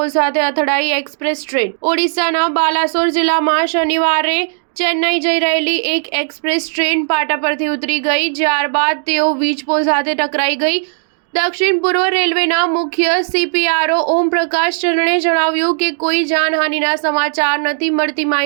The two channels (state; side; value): silent; left; digital silence